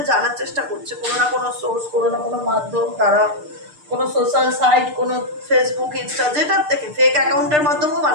জানার চেষ্টা করছে, কোনো না কোনো সোর্স, কোনো না কোনো মাধ্যম দ্বারা, কোনো সোশ্যাল সাইট, কোনো ফেসবুক, ইনস্টা, যেটার থেকে ফেক অ্যাকাউন্টের মাধ্যমেও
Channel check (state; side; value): late; left; 6.7 ms